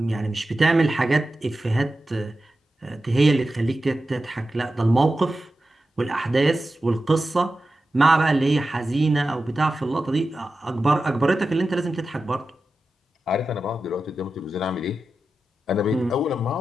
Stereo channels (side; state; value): both; normal; correlation 0.92